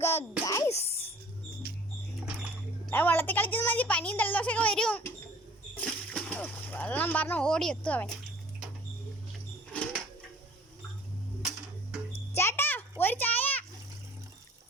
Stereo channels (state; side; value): normal; both; correlation 0.51